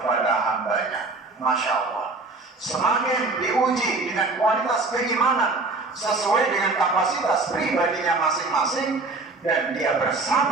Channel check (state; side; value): quieter; left; 3.5 dB